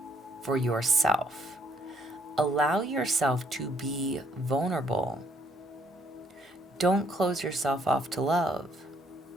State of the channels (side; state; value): both; normal; correlation 0.68